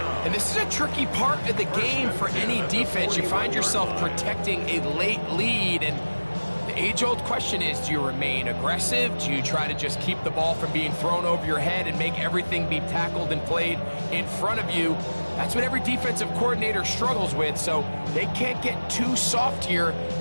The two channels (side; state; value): both; inverted; correlation -1.00